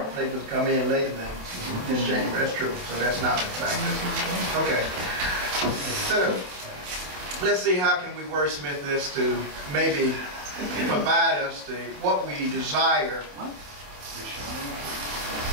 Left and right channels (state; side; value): late; left; 27 ms